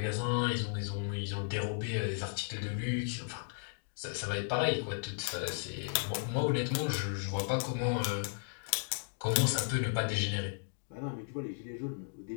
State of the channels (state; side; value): silent; right; digital silence